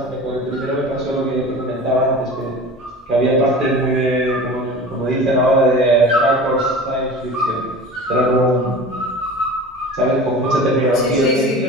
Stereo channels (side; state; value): both; normal; correlation 0.36